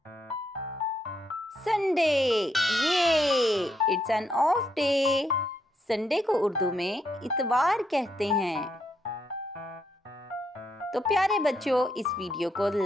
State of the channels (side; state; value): both; normal; correlation 0.77